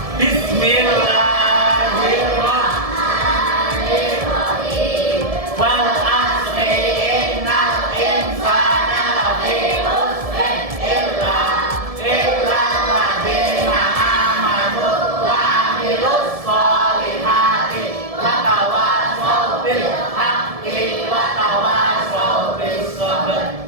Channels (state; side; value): late; left; 1.7 ms